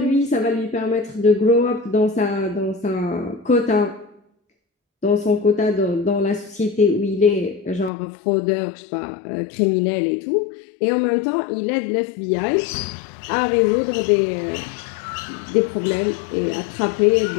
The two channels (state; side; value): drops out; right; at 7.9 s